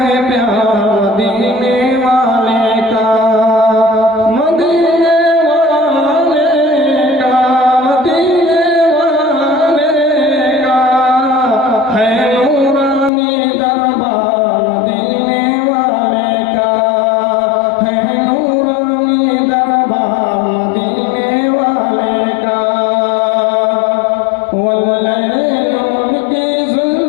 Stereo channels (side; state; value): right; drops out; at 13.1 s